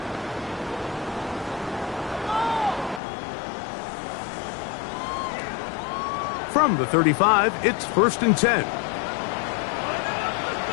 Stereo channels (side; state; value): right; drops out; at 3.0 s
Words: From the 35, it's first and 10.